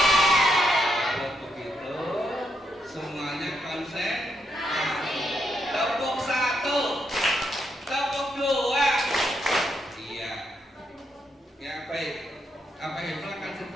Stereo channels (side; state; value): both; normal; correlation 0.80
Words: Kalau begitu semuanya konsen. Tepuk 1, tepuk 2. Iya. Ya baik. Abah Ibnu akan